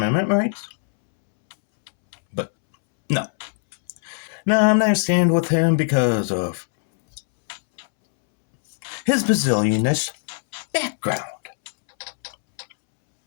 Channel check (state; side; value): silent; right; 65 dB below the other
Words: rights. But, no. No, I'm not stand with him because of his bazillionish background.